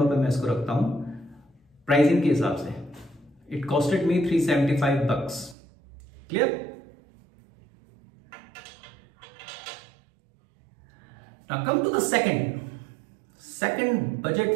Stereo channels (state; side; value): drops out; left; at 5.6 s